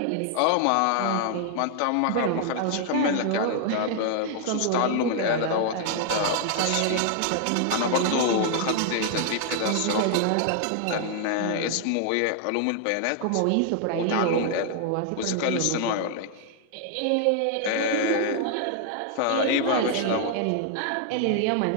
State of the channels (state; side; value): different; both; correlation 0.00